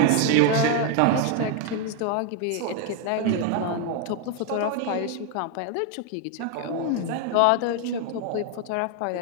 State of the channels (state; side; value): different; both; correlation 0.01